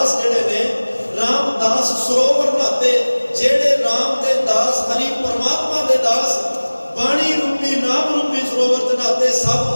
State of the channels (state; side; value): inverted; both; correlation -1.00